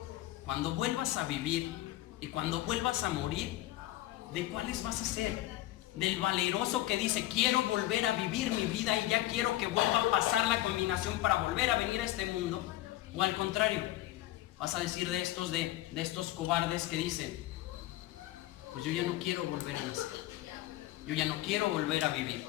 cuando vuelvas a vivir y cuando vuelvas a morir, ¿de cuáles vas a ser? ¿Del valeroso que dice, quiero volver a vivir mi vida y ya quiero que vuelva a pasar la combinación para volver a venir a este mundo? ¿O al contrario, vas a decir de estos cobardes que dicen, pues yo ya no quiero volver a nacer, yo ya no quiero volver a vivir,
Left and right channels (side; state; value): right; quieter; 15.8 dB